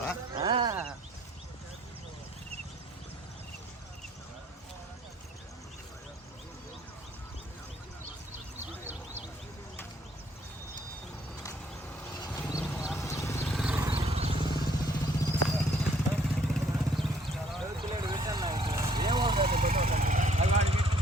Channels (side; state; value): both; normal; correlation 0.64